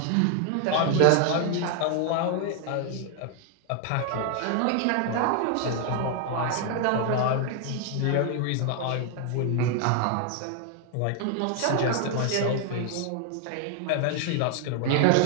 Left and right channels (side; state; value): both; different; correlation 0.00